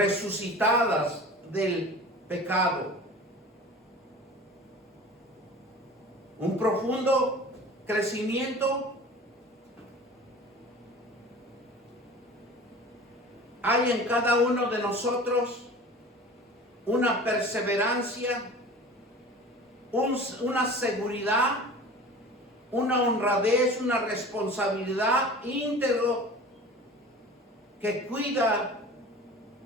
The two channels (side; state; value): both; normal; correlation 0.40